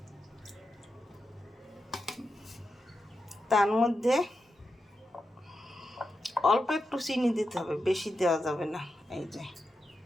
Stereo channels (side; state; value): both; normal; correlation 0.88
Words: তার মধ্যে অল্প একটু চিনি দিতে হবে, বেশি দেওয়া যাবে না। এই যে